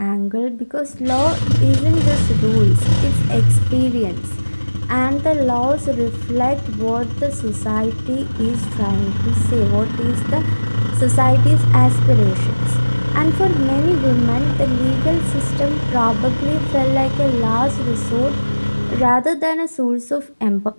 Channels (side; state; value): both; inverted; correlation -1.00